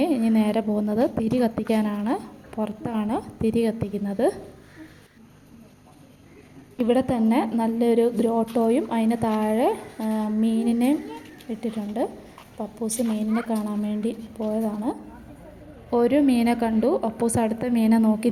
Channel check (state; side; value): identical; both; correlation 1.00